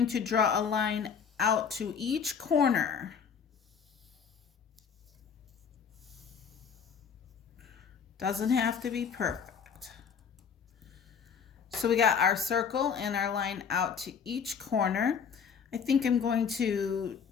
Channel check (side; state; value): right; quieter; 6.7 dB